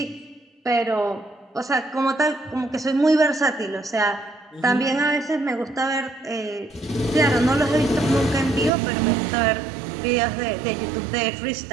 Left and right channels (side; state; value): left; drops out; at 8.7 s